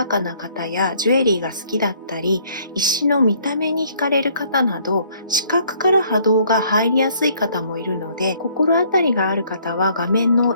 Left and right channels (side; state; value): both; inverted; correlation -0.62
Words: かな方やジュエリーが好きだったり、石の見た目に惹かれる方など、視覚から波動が入りやすい方もいるので、心当たりがある方は画面の